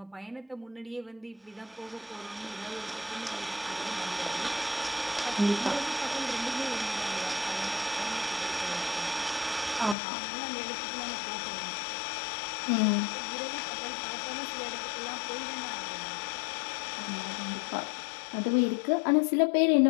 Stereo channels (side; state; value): right; drops out; at 10.0 s